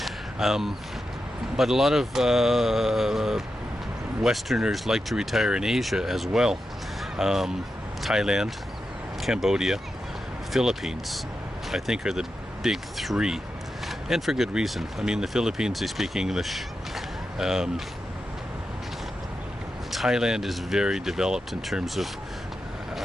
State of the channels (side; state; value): both; normal; correlation 0.89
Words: But a lot of Westerners like to retire in Asia as well. Thailand, Cambodia, Philippines, I think are the big three. And for good reason. I mean, the Philippines, they speak English. Thailand is very developed in terms of